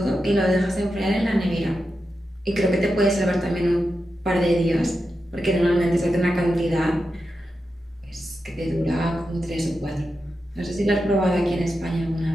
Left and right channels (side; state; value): both; normal; correlation 0.89